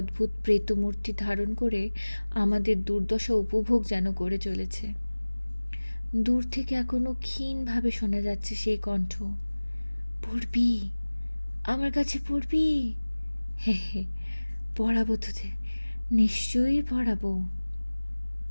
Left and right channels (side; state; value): both; inverted; correlation -1.00